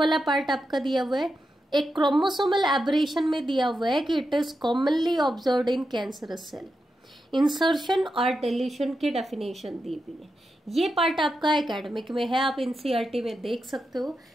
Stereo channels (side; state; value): both; normal; correlation 0.87